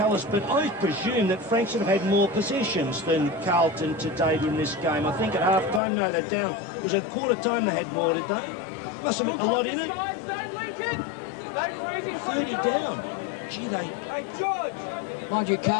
us, but I presume that Frankston have had more possessions than Carlton to date in this game. I think at half-time, no, they're down. It was at quarter-time they had more, did they? Must have been a lot in it. 30 down. Gee, Mind you,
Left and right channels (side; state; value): right; drops out; at 5.8 s